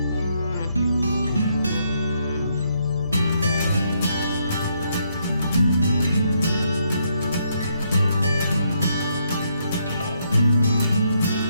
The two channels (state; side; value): inverted; both; correlation -0.75